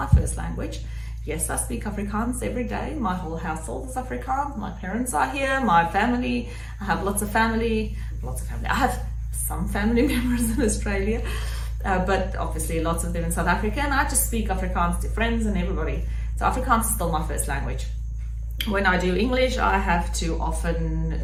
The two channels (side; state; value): both; identical; correlation 1.00